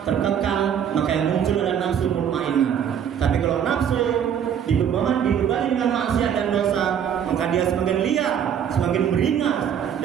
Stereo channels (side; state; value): left; quieter; 8.6 dB